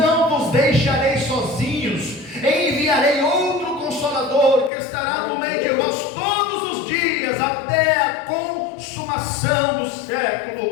vos deixarei sozinhos, enviarei outro Consolador, que estará no meio de vós todos os dias, até a consumação do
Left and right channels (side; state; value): right; drops out; at 4.7 s